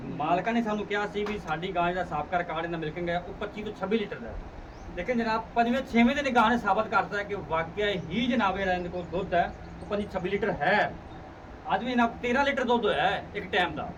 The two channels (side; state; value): both; identical; correlation 1.00